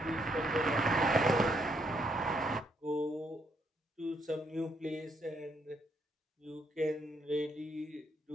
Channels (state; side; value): normal; both; correlation 0.74